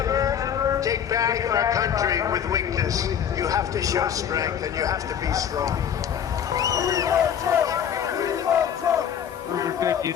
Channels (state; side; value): quieter; right; 8.7 dB